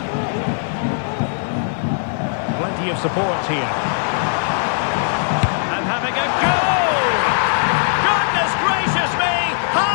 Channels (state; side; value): silent; right; digital silence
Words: Plenty of support here. And having a goal! Goodness gracious me!